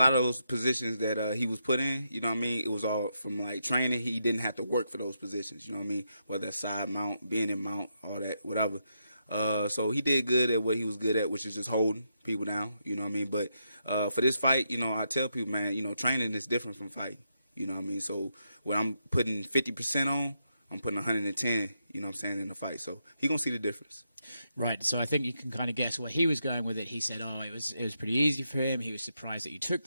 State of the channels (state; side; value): inverted; both; correlation -0.82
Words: of those positions that he was put in, you know what I mean? It was all from, like, training. He didn't have to work for those positions. You know what I mean? Whether that's side mount, being in mount, all that, whatever. So he did good at what he was good at, which is just holding people down. You know what I mean? But for this fight, you know, I tell people, man, you know, training is different from fighting. You know what I mean? So when I'm putting 50% on, I'm putting 110, you know what I'm saying, in the fight. So he going to see the difference. Right. So I think you can kind of guess where he was going with it. He said, it was pretty easy for him. He was surprised that you took